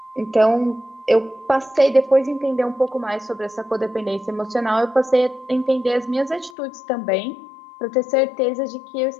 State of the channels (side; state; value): right; drops out; at 6.6 s